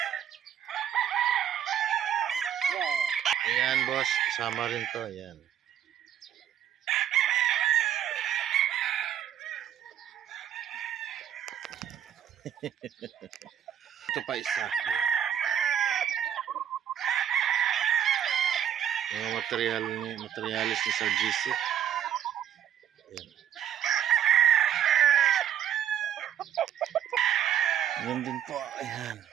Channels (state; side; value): quieter; left; 9.8 dB